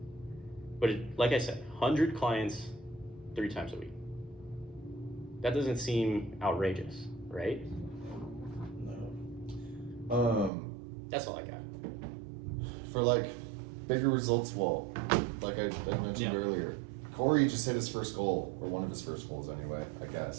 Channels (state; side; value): drops out; left; at 10.5 s